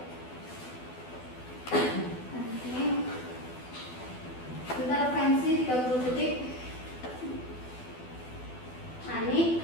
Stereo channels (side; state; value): right; late; 12 ms